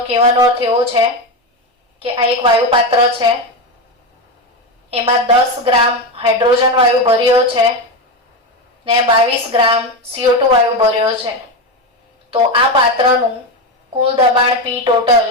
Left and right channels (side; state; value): both; normal; correlation 0.15